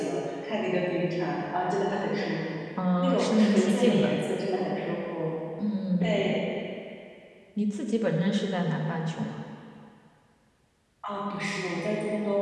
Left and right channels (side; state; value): both; identical; correlation 1.00